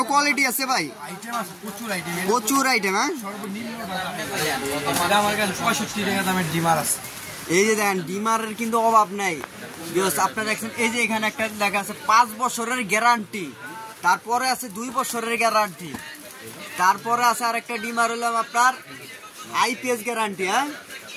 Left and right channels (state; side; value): identical; both; correlation 1.00